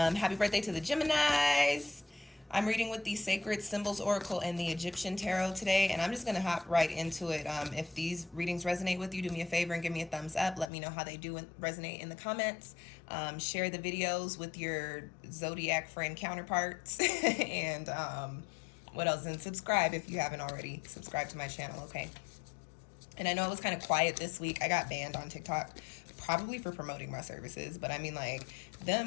birthday to the Geminis. I'm reading with the Sacred Symbols Oracle and the Egyptian Tarot today, and I'm just going to hop right into it. If these readings resonate with you, do me a favor and give me a thumbs up. Let me know how they do resonate in the comments. Share the videos with your zodiac friend counterparts. And what else? And subscribe if you haven't already. Subscribe to my channel, okay? And I know it was kind of quiet this week. I got banned on TikTok, probably for promoting my services. But I mean, like,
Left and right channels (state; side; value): drops out; right; at 10.7 s